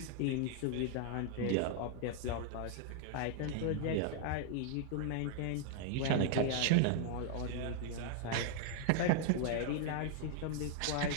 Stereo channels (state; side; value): different; both; correlation 0.00